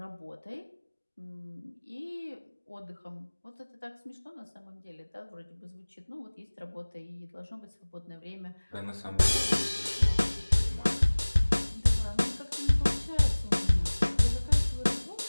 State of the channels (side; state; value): both; inverted; correlation -1.00